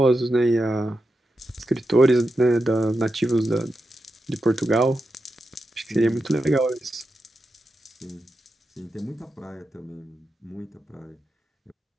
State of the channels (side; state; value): both; normal; correlation 0.88